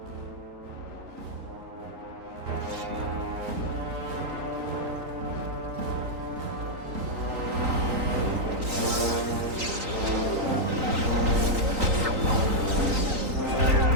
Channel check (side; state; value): left; late; 3.9 ms